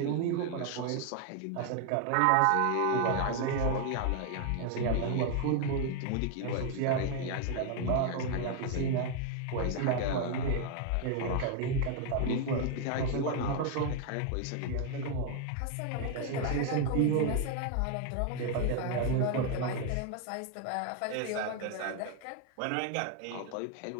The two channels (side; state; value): both; different; correlation 0.00